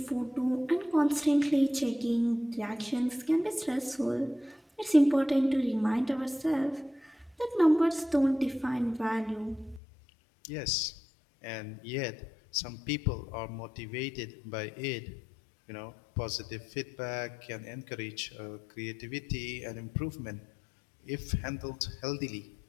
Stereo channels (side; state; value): right; drops out; at 9.8 s